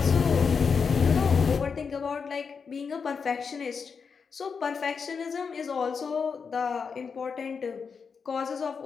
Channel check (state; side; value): quieter; right; 5.8 dB